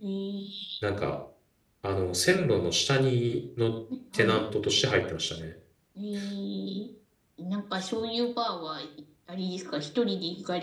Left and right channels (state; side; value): identical; both; correlation 1.00